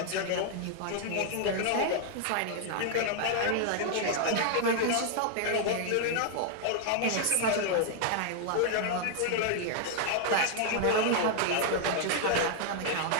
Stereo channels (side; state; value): both; different; correlation 0.00